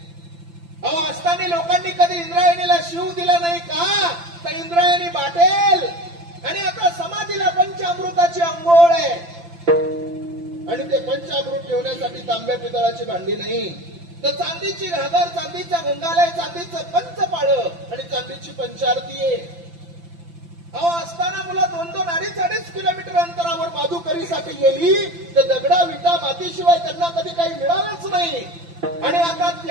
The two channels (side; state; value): left; late; 5.9 ms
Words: अहो असताना लोकांनी कधी इंद्रायणीला शिव दिला नाही का तर इंद्रायणी बाटेल आणि आता समाधीला पंचामृताची अंघोळ आहे आणि ते पंचामृत ठेवण्यासाठी तांब्या पितळाची भांडी नाही तर चांदीची घागर चांदीचा गंगालय चांदीचं पंचपाळ आणि चांदीची पंचारती आहे. अहो असताना मुलं 2-2, 2.5 किलोमीटर अंतरावर माधुकरीसाठी गेली तर दगडा विटा मातीशिवाय त्यांना कधी काही मिळालंच नाही आणि आता